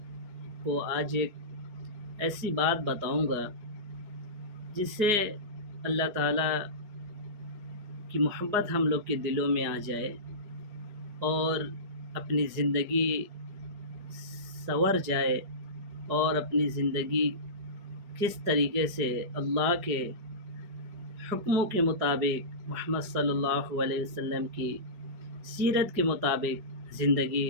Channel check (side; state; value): left; late; 4.8 ms